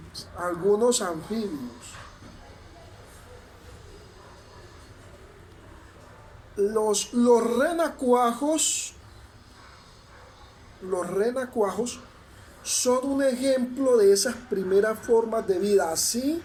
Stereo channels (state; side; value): identical; both; correlation 1.00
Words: Los renacuajos, los renacuajos son un ejemplo de esas primeras formas de vida. Así